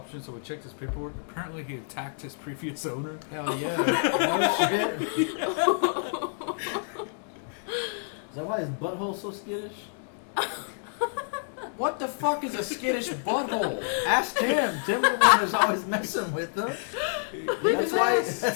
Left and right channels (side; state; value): right; silent; 59 dB below the other